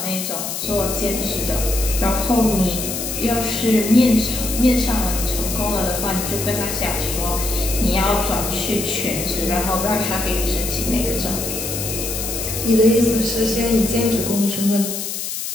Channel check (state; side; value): noise; left; hiss, 4 dB below the sound